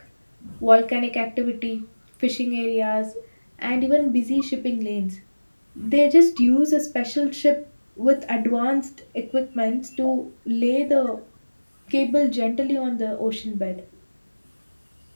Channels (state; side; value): inverted; both; correlation -1.00